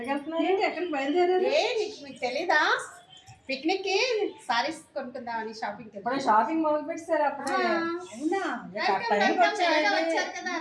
వెళ్తున్నారు? ఏంటి ఎక్కడికి బయలుదేరారు? మీకు తెలీదా? పిక్నిక్ కి సారీస్ కొనుక్కుందామని షాపింగ్ ఇప్పుడు షాపింగ్ మొదలు పెట్టారు అప్పుడే. అవునా? వచ్చారు కదా,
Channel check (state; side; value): identical; both; correlation 1.00